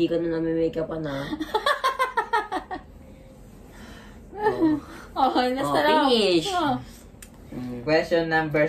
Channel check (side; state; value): both; identical; correlation 1.00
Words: ka na nami-makeupan na. Finish! Question